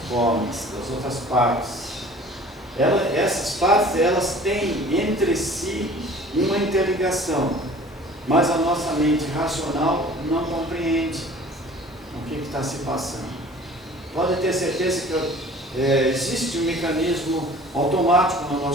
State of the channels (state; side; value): normal; both; correlation 0.47